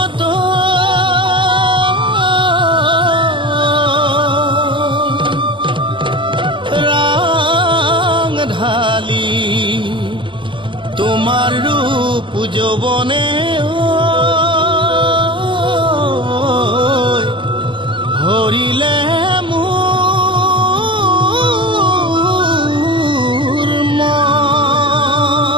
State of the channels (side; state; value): left; late; 0.24 ms